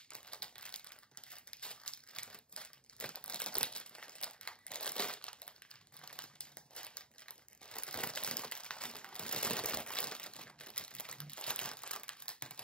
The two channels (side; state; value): right; late; 0.049 ms